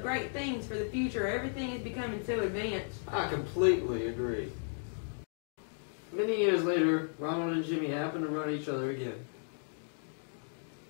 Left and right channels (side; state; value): right; silent; digital silence